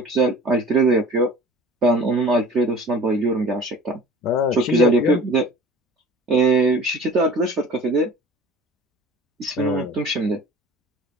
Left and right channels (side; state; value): both; normal; correlation 0.43